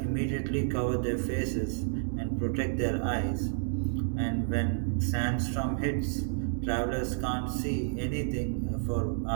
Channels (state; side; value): silent; left; digital silence